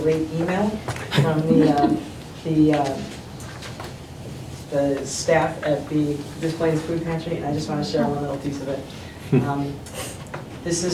email from the staff at the Des Plaines Food Pantry, and I just want to share one little piece of it. This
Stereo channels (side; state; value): both; identical; correlation 1.00